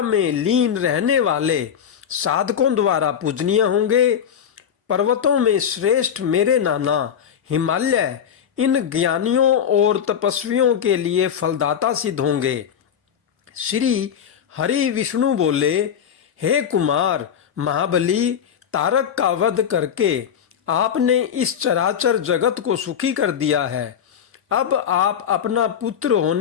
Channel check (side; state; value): right; quieter; 8.4 dB